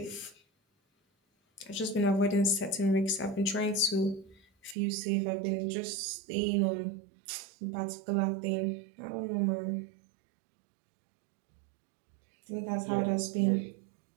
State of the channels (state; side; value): drops out; left; at 4.8 s